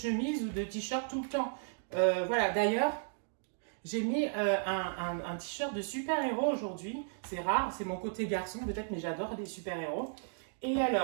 ou de t-shirt tout le temps. Voilà, d'ailleurs, j'ai mis un t-shirt de super-héros aujourd'hui. C'est rare, c'est mon côté garçon peut-être, mais j'adore les super-héros. Et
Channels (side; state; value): left; silent; digital silence